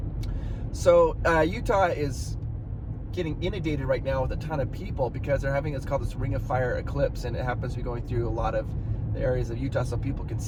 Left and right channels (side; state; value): both; identical; correlation 1.00